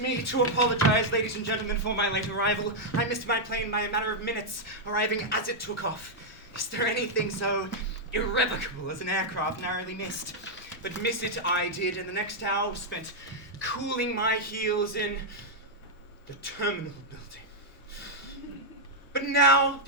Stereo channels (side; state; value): both; normal; correlation -0.04